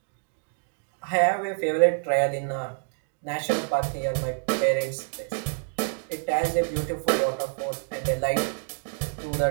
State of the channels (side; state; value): left; silent; digital silence